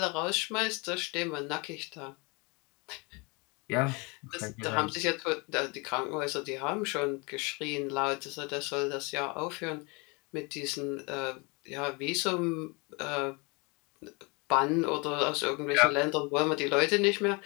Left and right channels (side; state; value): right; quieter; 29.2 dB